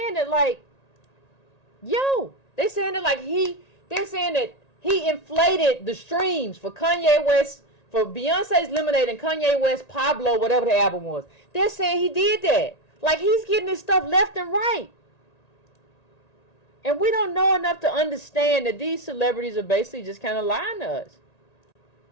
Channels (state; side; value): late; right; 1.9 ms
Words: that like, they're saying that he inflated the streams for Kanye West, for Beyonce's Lemonade and Kanye West Pablo, whatever the album was. They're saying he did that. Like, he's getting this stuff left and right. And we don't know enough to understand that these celebrities are basically just kind of lying to us.